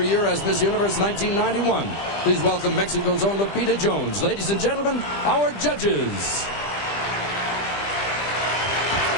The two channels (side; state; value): right; late; 20 ms